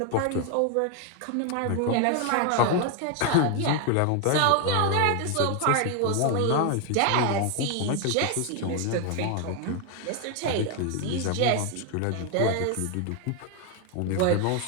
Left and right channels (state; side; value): different; both; correlation 0.01